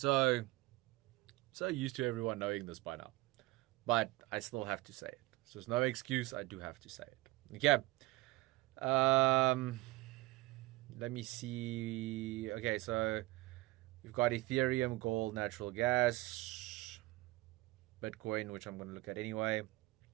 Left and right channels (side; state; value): left; quieter; 20.1 dB